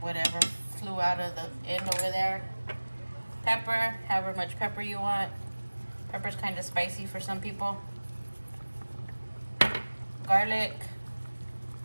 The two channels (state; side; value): inverted; both; correlation -1.00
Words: whatever flew out of the end over there. Pepper, however much pepper you want. Pepper's kind of spicy for some people. Garlic,